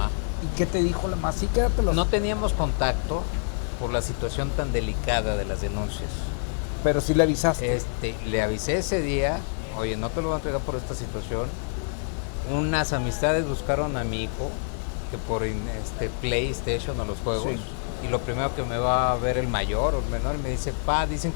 ¿Y qué te dijo la mamá? Sí, quédatelos. No teníamos contacto por la situación tan delicada de las denuncias. Pero sí le avisaste. Le avisé ese día, oye, no te lo voy a entregar por esta situación. Unas amistades buscaron a mi hijo, que por PlayStation o los juegos, sí. Y lo primero que me va a ver el mayor o el menor, y me dice, pa, dicen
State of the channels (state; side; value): silent; right; digital silence